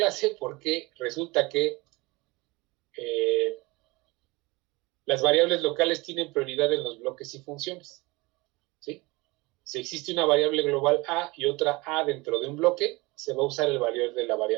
porque resulta que las variables locales tienen prioridad en los bloques y funciones, ¿sí? Si existe una variable global A y otra A dentro de un bloque, se va a usar el valor de la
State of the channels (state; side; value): quieter; left; 23.7 dB